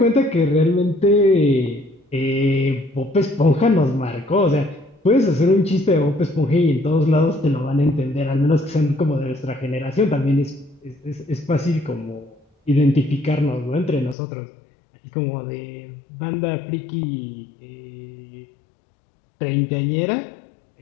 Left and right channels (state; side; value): drops out; right; at 14.2 s